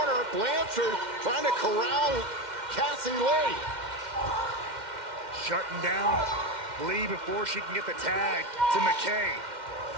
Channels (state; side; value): late; left; 2.1 ms